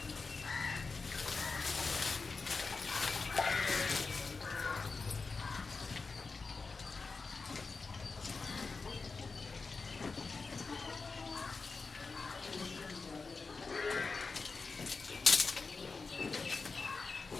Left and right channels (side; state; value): right; quieter; 4.3 dB